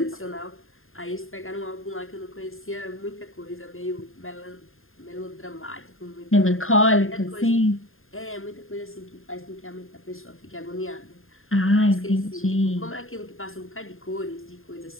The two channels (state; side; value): late; right; 0.60 ms